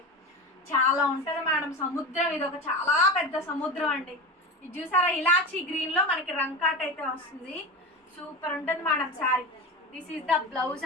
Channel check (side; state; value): both; normal; correlation 0.25